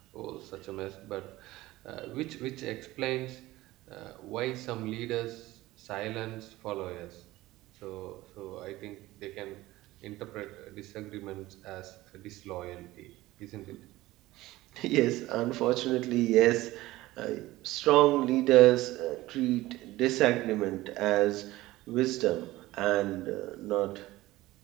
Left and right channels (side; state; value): left; quieter; 17.8 dB